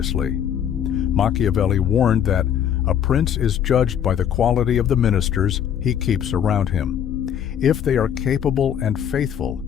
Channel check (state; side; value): quieter; right; 9.2 dB